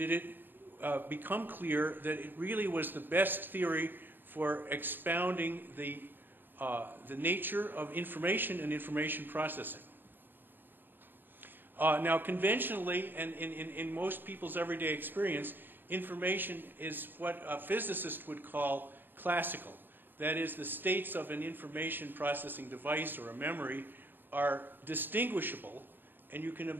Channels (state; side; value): late; left; 0.094 ms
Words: it become clear that it really was the best theory for expounding the nature of information and information processing. Now, conventionally, and in most people's everyday experience, information is what a physicist would call classical. That is, the states of an information processing device or a memory are distinguishable, and you can